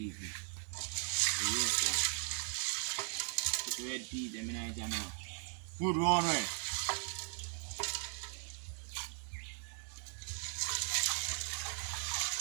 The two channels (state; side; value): silent; left; 52 dB below the other